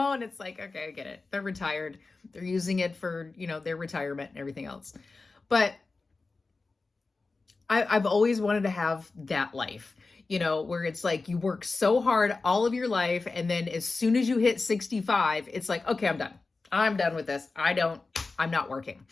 it's like, okay, I get it. They're retired. They're using it for, their retirement and everything else. But I've always wanted to have that life, where it's like you work so hard all of your life. And then as soon as you hit 65, it's like, okay, I'm done. I'm done with this. I'm not working.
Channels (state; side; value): quieter; right; 3.8 dB